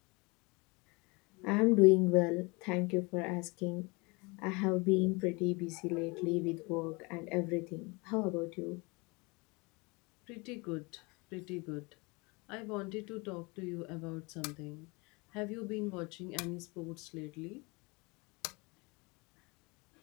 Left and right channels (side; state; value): right; quieter; 27.5 dB